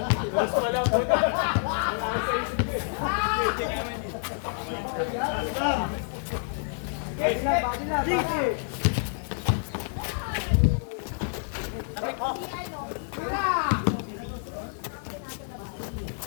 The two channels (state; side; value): silent; right; 59 dB below the other